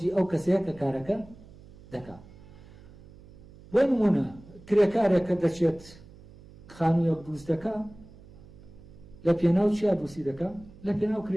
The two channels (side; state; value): right; noise; hum, 21 dB below the sound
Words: ئەو کەسەیە کە کارەکە دەکات. بۆ نمونە کرێکارێک کە دەچێت خانوویەک دروست دەکات لە پێناو چیا دروستی دەکات؟ لە پێناو